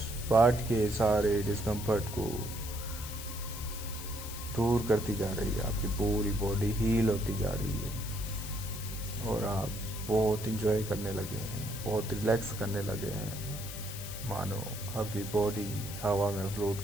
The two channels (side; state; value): left; noise; hiss, 10 dB below the sound